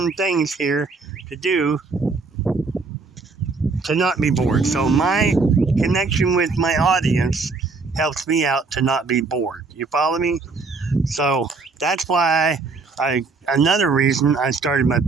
things here to do to not be bored. So my connection with my audience helps me out to not be bored. You follow me? So that's why another reason I started my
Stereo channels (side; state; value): left; quieter; 4.2 dB